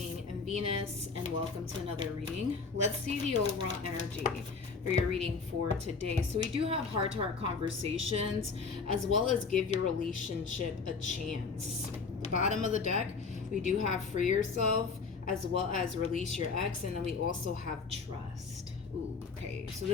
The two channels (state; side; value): quieter; right; 4.8 dB